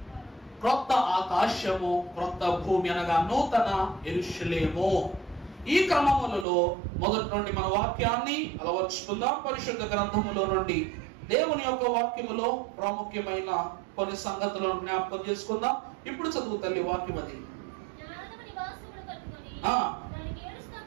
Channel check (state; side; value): drops out; left; at 6.5 s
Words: క్రొత్త ఆకాశము, క్రొత్త భూమి అనగా నూతన యెరూషలేము. ఈ క్రమములలో మొదటి నుండి మన వాక్యాన్ని అలవర్చుకుందాం. పరిశుద్ధ గ్రంథములో నుండి దేవుని యొక్క వాక్యములో ప్రాముఖ్యమైన కొన్ని సంగతులను జ్ఞాపకం చేసుకుందాం. ఇప్పుడు చదువు తల్లి వాక్యం. అది